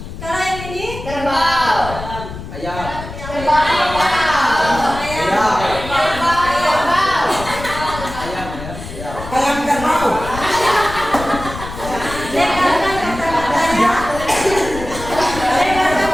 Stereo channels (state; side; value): noise; left; rumble, 11 dB below the sound